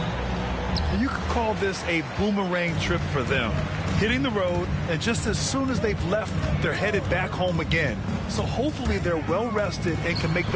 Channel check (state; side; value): identical; both; correlation 1.00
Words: You could call this a boomerang trip for them. Hitting the road, and just as soon as they've left, they're headed back home again. So hopefully they're well rested and can make